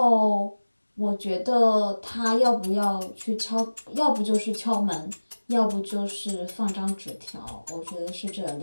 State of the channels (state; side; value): inverted; both; correlation -1.00